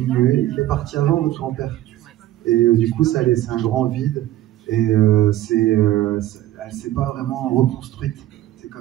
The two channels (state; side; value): quieter; left; 14.3 dB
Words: Il est parti avant, votre grand-père. Et du coup, ça a laissé un grand vide, et elle ne s'est pas vraiment reconstruite. C'est